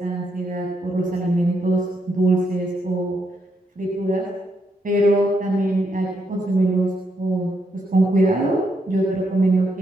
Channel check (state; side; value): normal; both; correlation 0.79